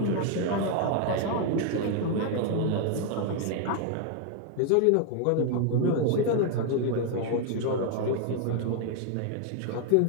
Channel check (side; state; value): both; different; correlation 0.00